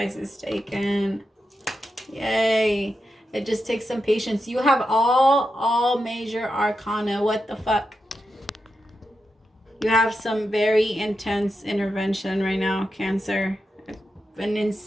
is taken. Yay. It just takes some patience. You have all major arcana. What the fuck? You have some very intense intervention right now, Cancer. An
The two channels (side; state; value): both; normal; correlation 0.88